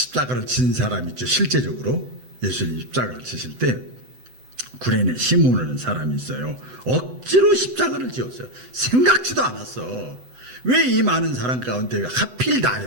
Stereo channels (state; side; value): late; left; 7.9 ms